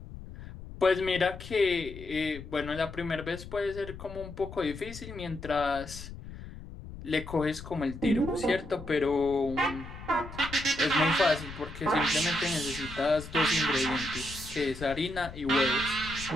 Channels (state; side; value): noise; left; rumble, 13 dB below the sound